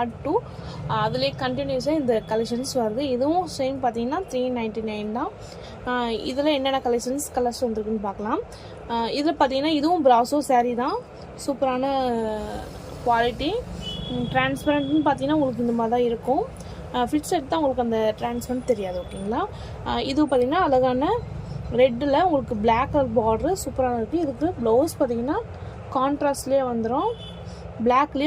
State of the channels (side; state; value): both; identical; correlation 1.00